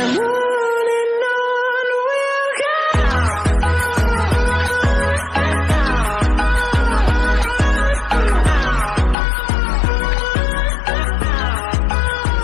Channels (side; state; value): right; drops out; at 9.2 s